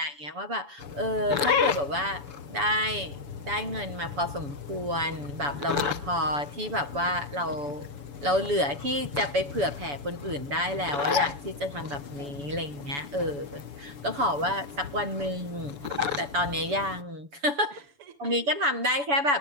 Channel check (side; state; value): left; late; 7.0 ms